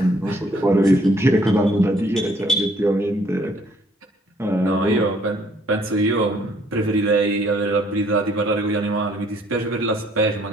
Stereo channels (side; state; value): both; normal; correlation 0.63